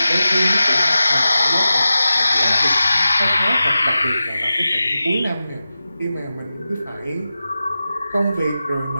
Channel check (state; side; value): inverted; both; correlation -0.93